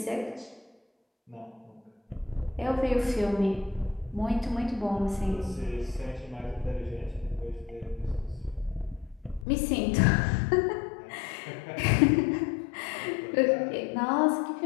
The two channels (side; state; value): right; drops out; at 9.5 s